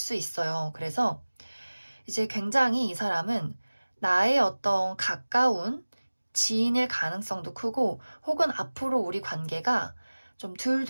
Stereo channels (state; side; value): inverted; both; correlation -1.00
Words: 있어요. 그래서 이제 굉장히 이 사람은 나의 어떤 가까운 지인일 가능성도 크고 혹은 앞으로 우리 관계가 좀